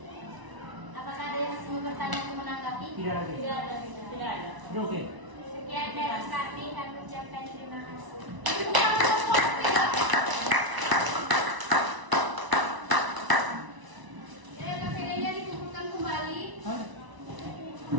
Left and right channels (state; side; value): late; left; 1.0 ms